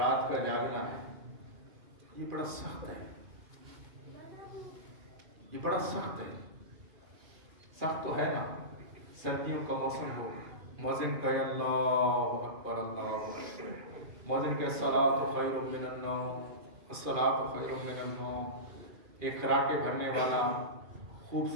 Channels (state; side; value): late; left; 2.5 ms